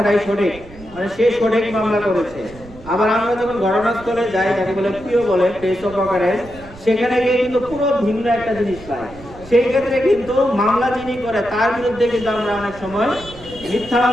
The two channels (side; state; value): right; noise; rumble, 19 dB below the sound